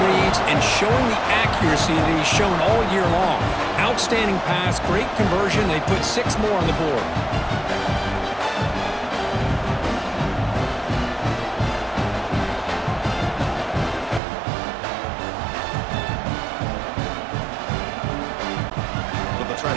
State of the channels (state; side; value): drops out; left; at 14.2 s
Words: reads and showing the accuracy that he's shown all year long. Outstanding pass, great conversion. They put 6 more on the board. So they'll try